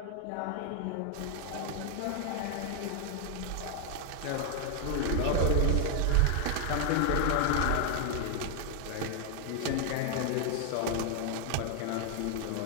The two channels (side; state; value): both; different; correlation 0.00